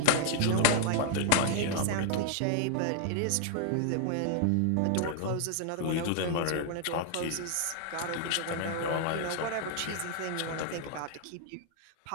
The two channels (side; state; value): both; different; correlation -0.01